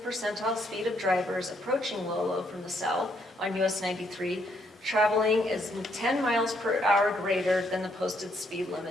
percentile speed of drivers approaching Lolo from the south on US 93, traveling is 10 miles per hour greater than the posted speed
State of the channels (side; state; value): both; normal; correlation 0.72